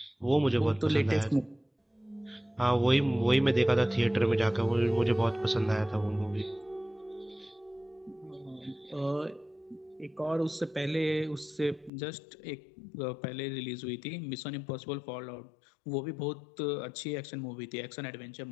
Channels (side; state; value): right; drops out; at 11.9 s